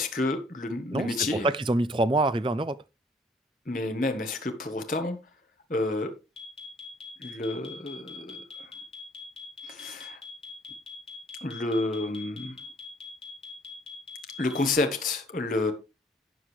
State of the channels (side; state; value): both; normal; correlation 0.60